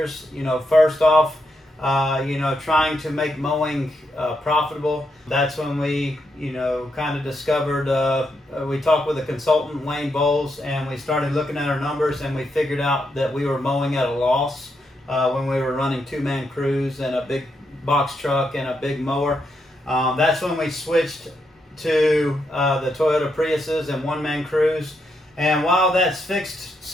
First off, trying to make mowing profitable. That's when we, kind of discovered, we talked with a consultant, Wayne Bowles, and we started looking at our numbers, and we figured out that we were mowing at a loss when we were running two-man crews and a big box truck and a big mower. That's when we switched to the Toyota Priuses and one-man crews. And while that's fixed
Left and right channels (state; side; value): normal; both; correlation 0.81